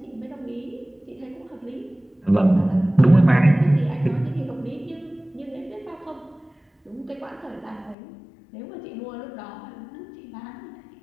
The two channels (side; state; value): right; drops out; at 8.0 s